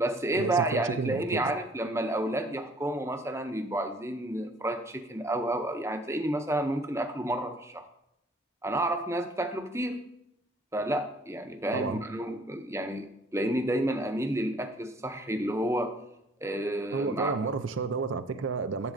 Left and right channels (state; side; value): normal; both; correlation 0.56